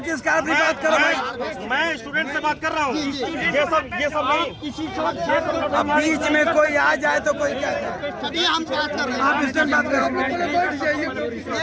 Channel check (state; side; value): identical; both; correlation 1.00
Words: स्कॉलर की बात करो भाई। मैं स्टूडेंट से बात कर रहा हूँ। ये सब नहीं। अब बीच में कोई आ जाए तो कोई क्या करे? चलिए हम बात कर रहे हैं। आप इसमें बात करो।